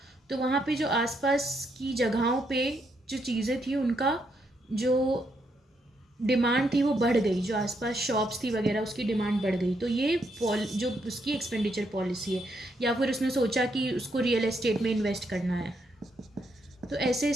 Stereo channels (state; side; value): normal; both; correlation 0.77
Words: तो वहाँ पे जो आसपास की जगहों पे जो चीज़ें थी उनका जो डिमांड थी वो बढ़ गई, जो आसपास शॉप्स थी वगैरह उसकी डिमांड बढ़ गई। तो ये जो उसकी एक्सपेंडिचर पॉलिसी है। या फिर उसने सोचा कि उसको रियल एस्टेट में इन्वेस्ट करना है, तो ऐसे